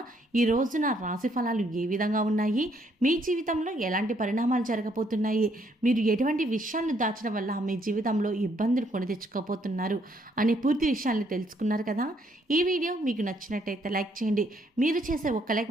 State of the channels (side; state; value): both; normal; correlation 0.70